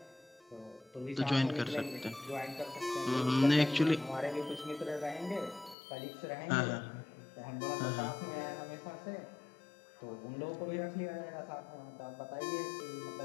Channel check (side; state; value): right; drops out; at 5.8 s